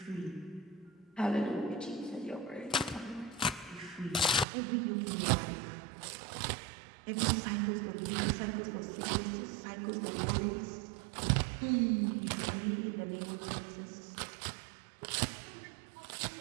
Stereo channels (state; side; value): drops out; left; at 4.5 s